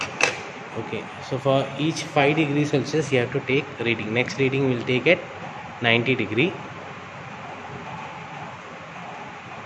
Okay, so for each 5 degrees Celsius you have to take reading. Next reading we'll take at 90 degree.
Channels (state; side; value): identical; both; correlation 1.00